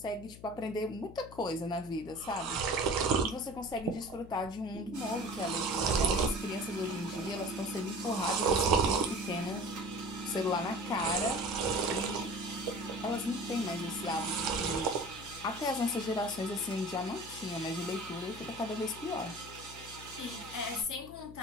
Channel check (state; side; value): noise; left; hum, 16 dB below the sound